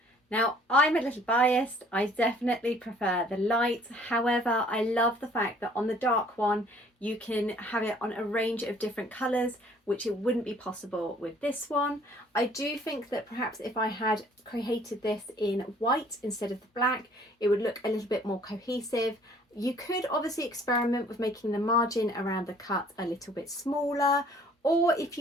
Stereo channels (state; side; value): normal; both; correlation 0.56